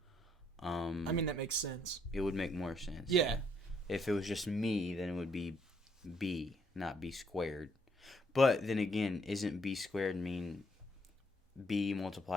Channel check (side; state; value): both; normal; correlation 0.70